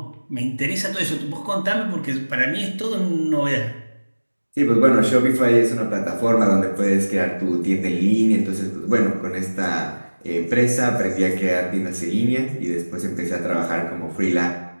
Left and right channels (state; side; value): inverted; both; correlation -1.00